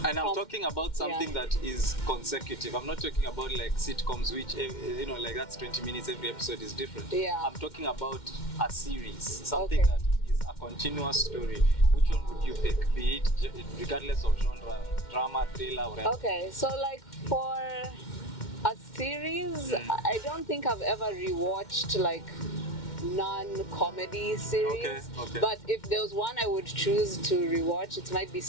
And I'm talking about something that is consecutive. I'm not talking about like sitcoms, which like that's 20 minutes. Every episode is different. I'm talking about a series, something that is a continuous story. Which one would you pick? Be it regardless of genre, drama, thriller, or anything? Okay, so like for A series? I don't think I've ever rewatched like non-comedy series. Okay. But if there was one I would choose to rewatch, it might be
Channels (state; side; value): late; right; 2.1 ms